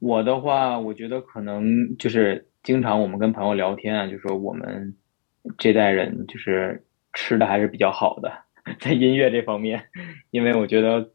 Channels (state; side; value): silent; right; digital silence